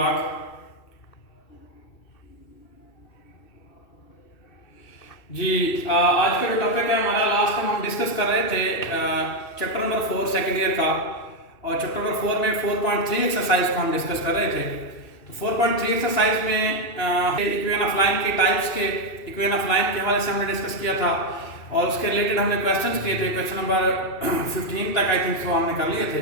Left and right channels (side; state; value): right; late; 2.6 ms